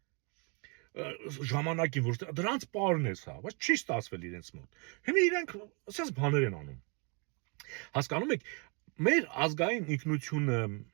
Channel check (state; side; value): quieter; left; 33.3 dB